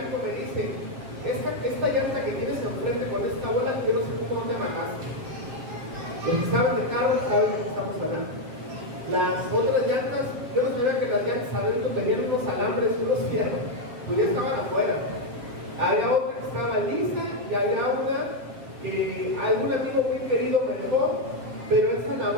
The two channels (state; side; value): late; left; 7.7 ms